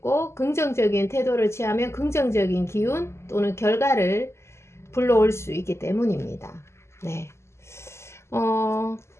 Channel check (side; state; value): right; late; 0.13 ms